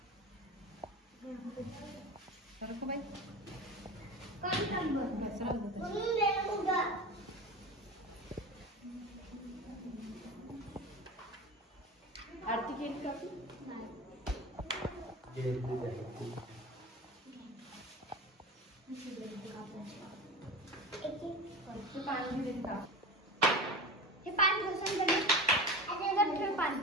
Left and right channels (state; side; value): normal; both; correlation 0.29